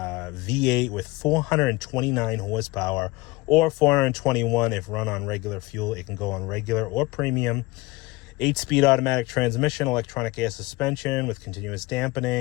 with 429 horsepower, or 421 if run on regular fuel. It can go on regular or premium. 8-speed automatic transmission, electronic air suspension with continuous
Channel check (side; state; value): right; quieter; 21.7 dB